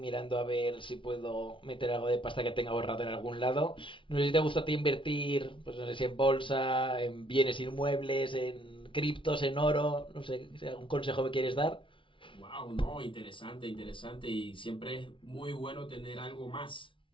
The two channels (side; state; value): right; late; 0.25 ms